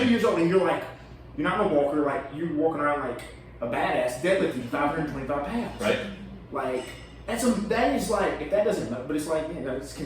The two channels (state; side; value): identical; both; correlation 1.00